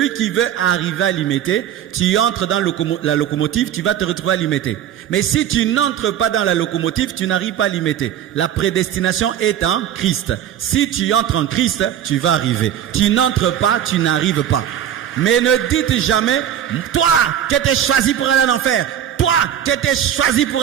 qui veut arriver à Limete, tu entres dans la locomotive, tu vas te retrouver à Limete. Mais si tu n'entres pas dans la locomotive, tu n'arrives pas à Limete. La prédestination est en Christ. Si tu entres en Christ, tu vas arriver. Tu n'entres pas, tu n'arrives pas. Mais ne dites jamais, toi qui étais choisi pour aller en enfer, toi qui étais choisi pour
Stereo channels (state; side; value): quieter; left; 10.3 dB